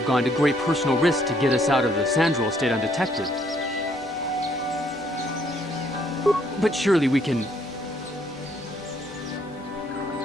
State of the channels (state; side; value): noise; right; hum, 29 dB below the sound